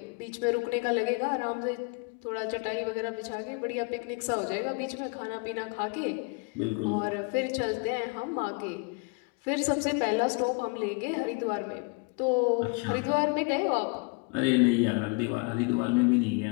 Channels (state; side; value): quieter; right; 31.1 dB